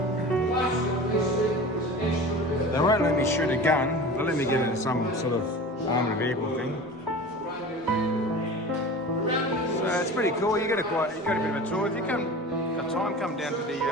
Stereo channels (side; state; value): both; normal; correlation 0.36